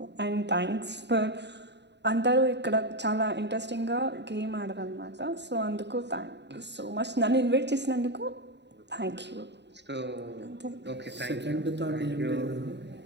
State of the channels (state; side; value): late; left; 0.50 ms